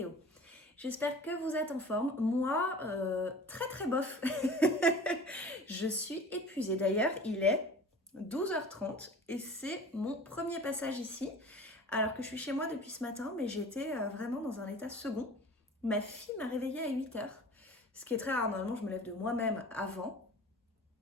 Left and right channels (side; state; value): both; normal; correlation 0.42